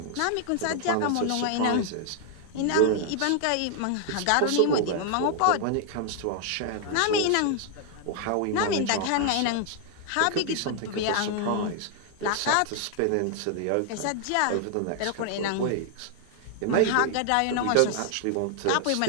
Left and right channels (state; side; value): different; both; correlation 0.00